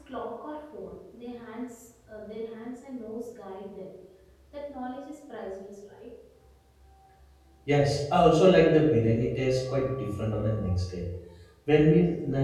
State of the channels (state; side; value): identical; both; correlation 1.00